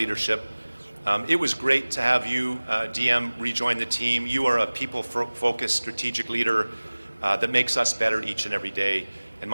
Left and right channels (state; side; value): inverted; both; correlation -1.00